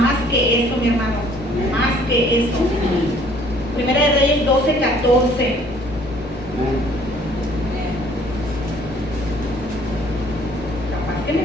que eso, mi hermano. Más que eso. Primera de Reyes 12, 14. Capaz que me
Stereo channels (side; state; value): both; normal; correlation 0.58